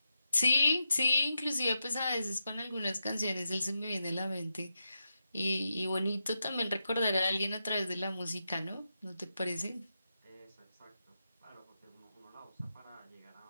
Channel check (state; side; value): inverted; both; correlation -0.87